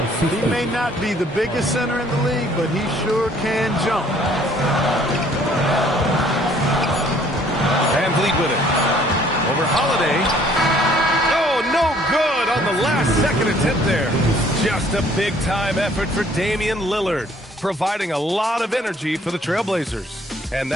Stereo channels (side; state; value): both; normal; correlation 0.60